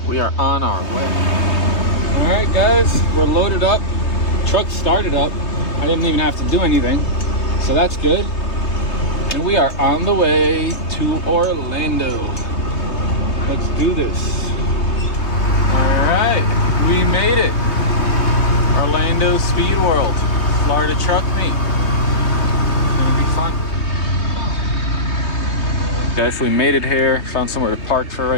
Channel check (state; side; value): late; right; 3.2 ms